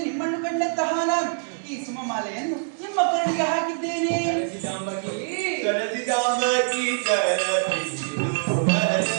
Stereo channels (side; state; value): left; silent; digital silence